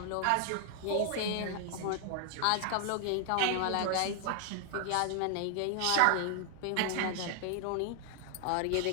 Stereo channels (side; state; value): both; different; correlation 0.00